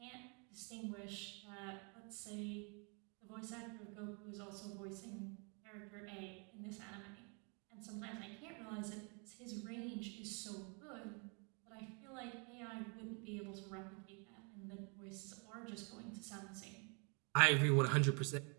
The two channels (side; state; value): left; quieter; 35.3 dB